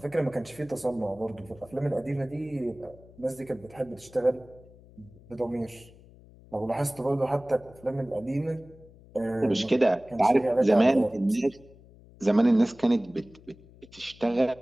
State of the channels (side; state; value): left; noise; hum, 23 dB below the sound